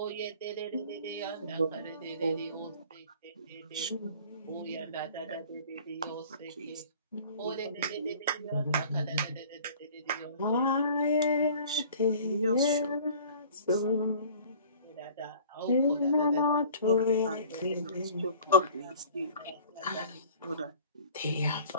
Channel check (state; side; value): inverted; both; correlation -0.48